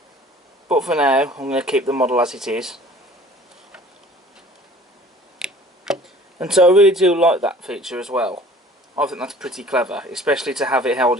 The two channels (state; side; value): normal; both; correlation 0.49